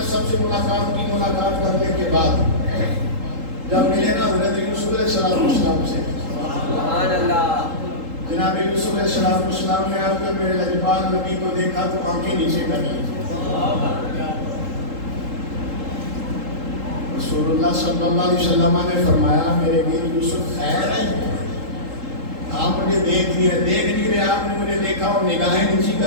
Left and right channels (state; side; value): late; left; 3.8 ms